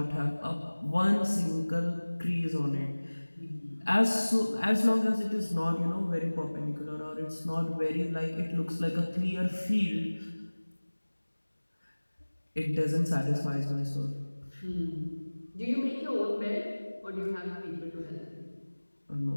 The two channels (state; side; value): inverted; both; correlation -1.00